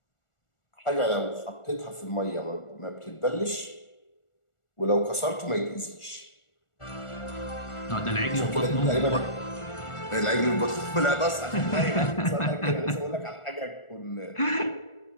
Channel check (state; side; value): late; right; 1.4 ms